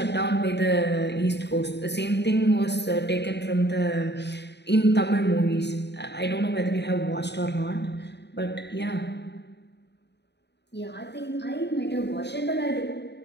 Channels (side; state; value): right; late; 0.50 ms